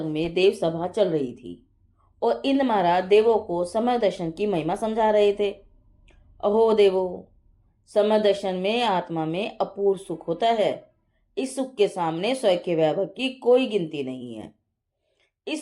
में देव सभा चल रही थी और इंद्र महाराज देवों को समय दर्शन की महिमा समझा रहे थे। अहो देवो, समय दर्शन में आत्मा में अपूर्व सुख होता है। इस सुख के सामने स्वयं के वैभव की कोई गिनती नहीं है।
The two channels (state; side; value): identical; both; correlation 1.00